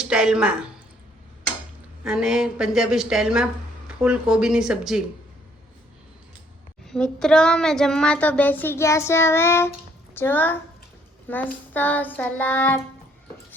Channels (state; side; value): normal; both; correlation 0.65